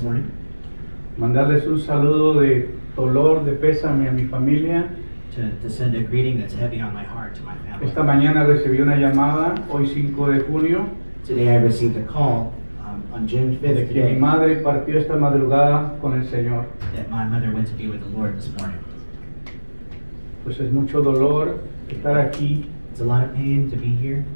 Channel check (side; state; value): both; inverted; correlation -1.00